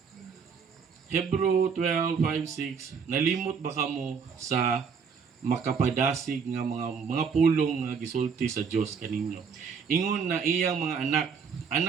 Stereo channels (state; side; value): quieter; left; 6.1 dB